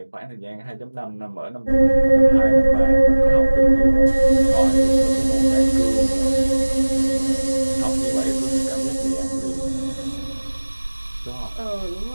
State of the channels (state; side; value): inverted; both; correlation -1.00